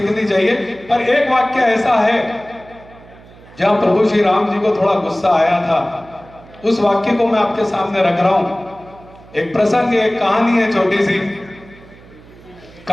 चाहिए। पर एक वाक्य ऐसा है जहां प्रभु श्री राम जी को थोड़ा गुस्सा आया था, उस वाक्य को मैं आपके सामने रख रहा हूं। एक प्रसंग, एक कहानी है, छोटी सी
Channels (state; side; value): noise; right; hum, 23 dB below the sound